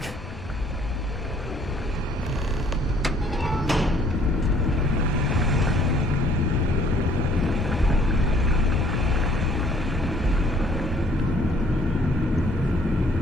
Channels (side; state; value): both; normal; correlation 0.60